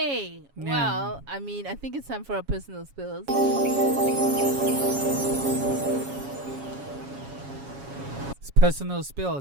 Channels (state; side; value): late; left; 7.2 ms